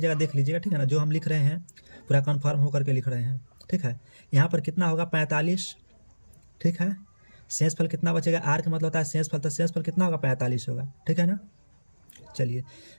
देख लीजिएगा। ठीक है ना। जो हम लिख रहे हैं पूरा कन्फर्म होकर के लिख रहे हैं। ठीक है। यहाँ पर कितना होगा? 45। ठीक है। शेष फल कितना बचेगा? आर का मतलब होता है शेष फल, तो शेष फल कितना होगा? 45 होगा। ठीक है ना। चलिए,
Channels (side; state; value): both; inverted; correlation -1.00